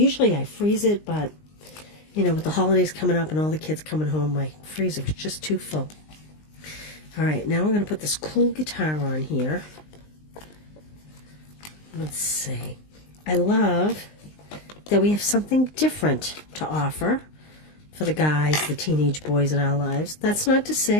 I freeze it, but, you know, with the holidays coming up and all the kids coming home, my freezer was just too full. All right, now I'm going to put this cool guitar on here. Let's see. I love that we have something different to offer for the guys, the teenage boys in our lives. That's not to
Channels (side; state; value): right; late; 19 ms